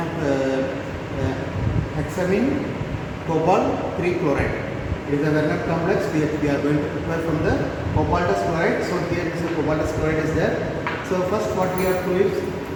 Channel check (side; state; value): both; identical; correlation 1.00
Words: of hexamine cobalt 3 chloride. It is a Werner complex. We are going to prepare from the cobaltous chloride. So here is the cobaltous chloride is there. So first what we have to do is,